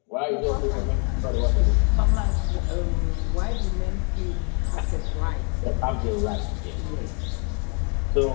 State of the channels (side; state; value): right; quieter; 37.5 dB